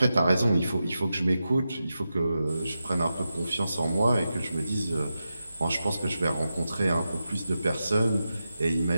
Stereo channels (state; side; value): inverted; both; correlation -0.90